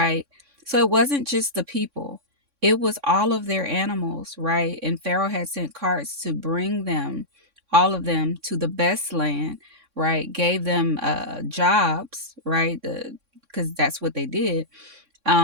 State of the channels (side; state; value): left; late; 3.6 ms